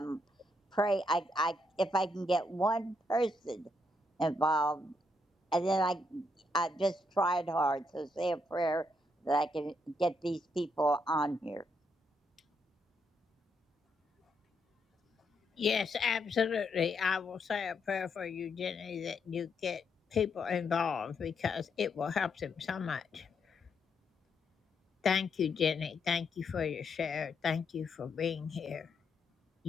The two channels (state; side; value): normal; both; correlation 0.78